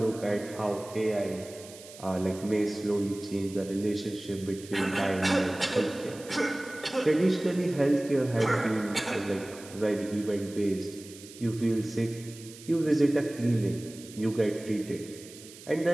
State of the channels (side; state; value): right; noise; hiss, 18 dB below the sound